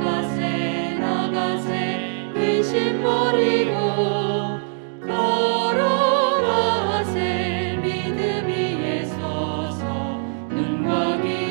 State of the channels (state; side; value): silent; left; 64 dB below the other